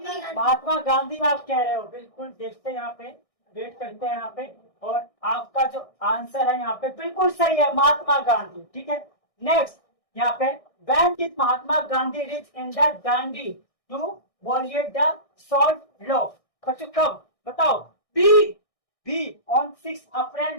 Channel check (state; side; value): late; right; 1.6 ms